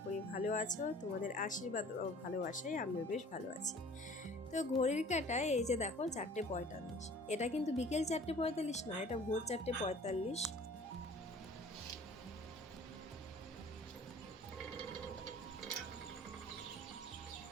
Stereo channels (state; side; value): normal; both; correlation 0.48